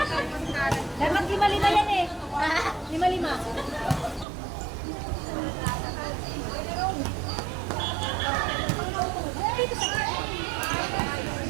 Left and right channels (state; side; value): drops out; left; at 4.2 s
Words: Dapat lima-lima yan eh! Lima-lima!